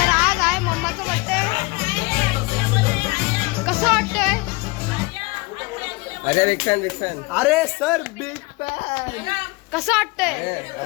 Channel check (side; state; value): right; quieter; 25.0 dB